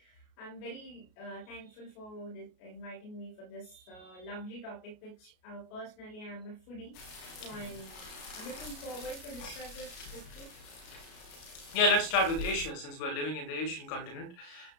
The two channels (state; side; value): late; right; 33 ms